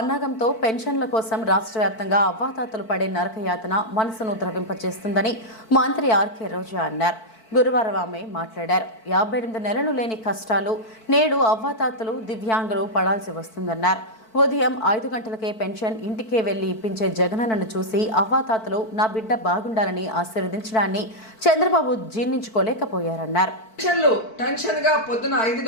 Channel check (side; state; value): right; late; 4.5 ms